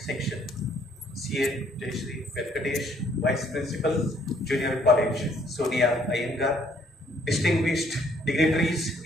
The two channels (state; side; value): normal; both; correlation 0.64